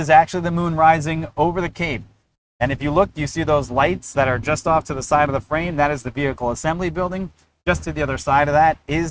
actually the moon rising over the Cape. And if you look, you see those lights that are just off to the side of the frame. That is the vehicle assembly building. Just to the other side of that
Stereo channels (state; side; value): identical; both; correlation 1.00